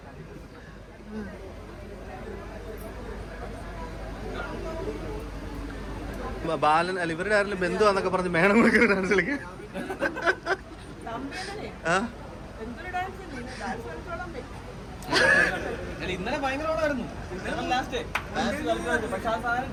ബാലൻ അല്ല ഇവരുടെ ആരെങ്കിലും ബന്ധുവാന്നൊക്കെ പറഞ്ഞ് മേണം ഡാൻസ് കളിക്കാൻ. ഇന്നലെ ഭയങ്കര ഓളായിരുന്നു. ഇന്നലെ ലാസ്റ്റ് പക്ഷെ ആ സാധനം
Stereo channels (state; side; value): identical; both; correlation 1.00